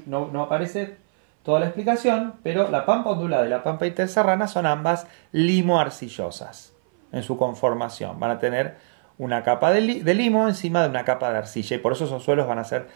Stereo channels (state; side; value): silent; left; 58 dB below the other